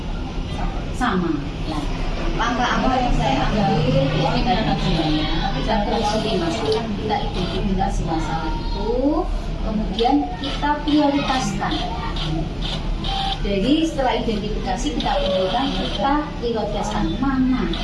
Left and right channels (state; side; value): identical; both; correlation 1.00